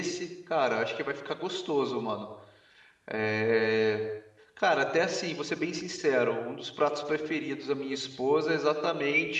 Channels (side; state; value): both; identical; correlation 1.00